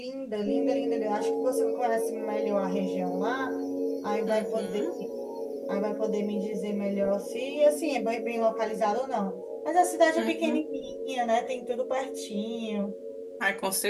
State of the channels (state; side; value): identical; both; correlation 1.00